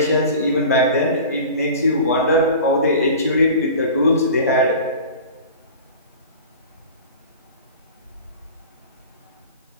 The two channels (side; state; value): both; inverted; correlation -0.38